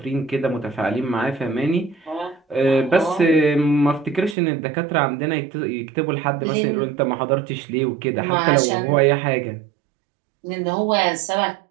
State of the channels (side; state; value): left; drops out; at 4.4 s